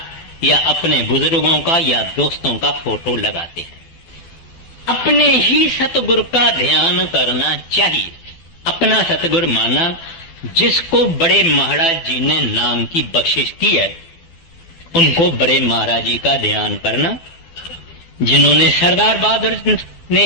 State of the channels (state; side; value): late; right; 12 ms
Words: या अपने बुजुर्गों का या दोस्तों का फोटो लगाते हैं। अपने ही सतगुरु का ध्यान करना चाहिए। अपना सतगुरु माना जिसको बड़े महाराज जी ने नाम की बख्शिश की है, उनको बड़े महाराज जी का ध्यान करना। जिन्होंने सरदार बहादुर